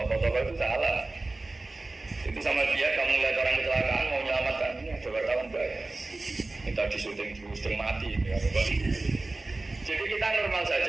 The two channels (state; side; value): quieter; left; 3.1 dB